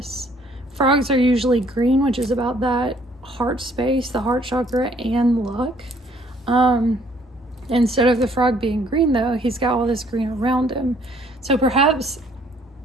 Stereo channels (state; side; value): normal; both; correlation 0.62